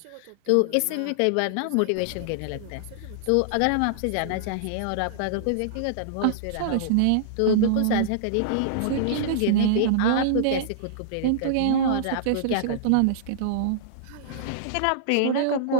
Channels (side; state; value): both; different; correlation -0.02